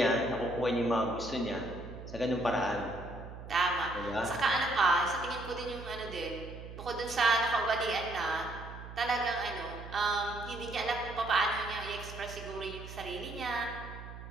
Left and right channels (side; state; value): right; noise; hum, 12 dB below the sound